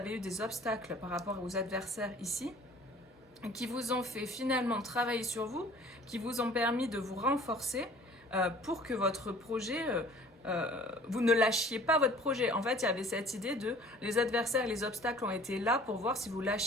eu des obstacles par rapport aux adversaires ici, qui vous ont fait finalement travailler sur vous, qui vous ont permis de vous renforcer pour que votre projet... vous ne lâchiez pas votre projet. En fait, il y avait cette idée de les adversaires et les obstacles ont été là pour voir si vous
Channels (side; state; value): both; normal; correlation 0.50